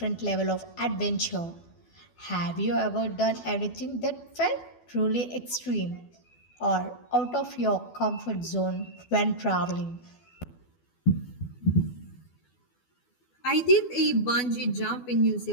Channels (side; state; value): right; late; 12 ms